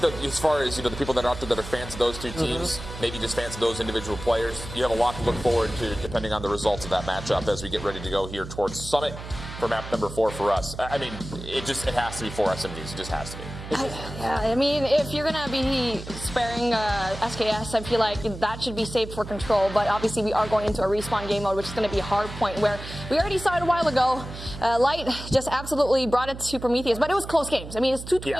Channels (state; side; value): noise; right; hum, 11 dB below the sound